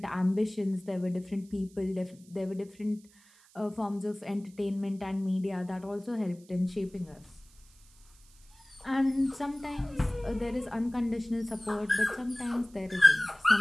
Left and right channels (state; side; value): noise; right; hiss, 27 dB below the sound